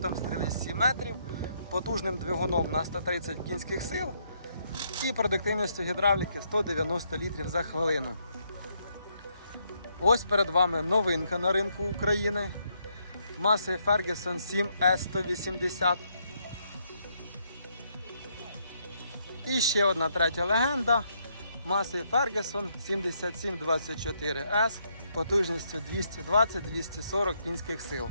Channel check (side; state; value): both; inverted; correlation -0.74